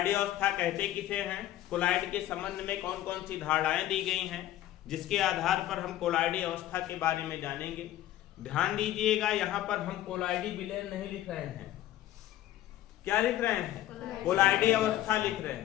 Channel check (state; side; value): quieter; right; 13.7 dB